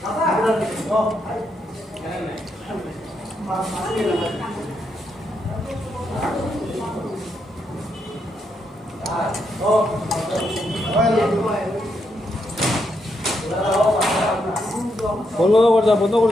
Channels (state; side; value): normal; both; correlation 0.80